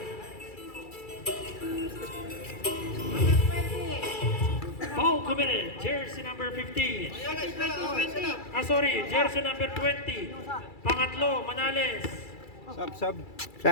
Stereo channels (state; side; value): late; right; 2.3 ms